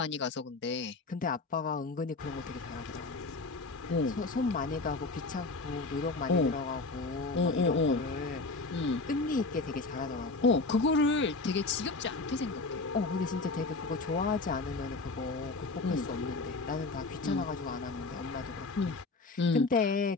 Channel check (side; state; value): right; quieter; 3.6 dB